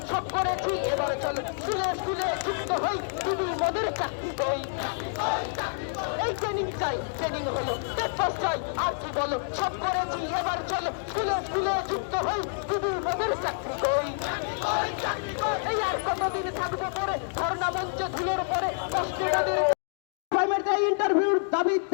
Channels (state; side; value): silent; right; digital silence